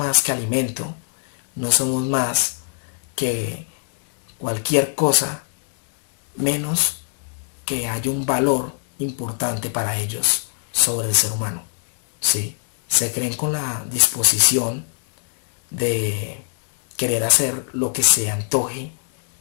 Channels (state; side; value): silent; right; 63 dB below the other